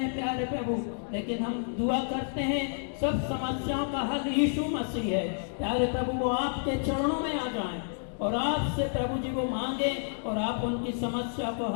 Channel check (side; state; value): right; silent; digital silence